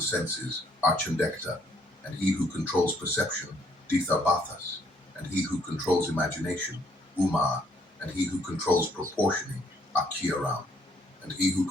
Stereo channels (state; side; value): normal; both; correlation 0.67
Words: senses are Chandekta, and he who controls perception, Dithabathas, and he who controls imagination, Umar, and he who controls proportioning, Akiaram, and he who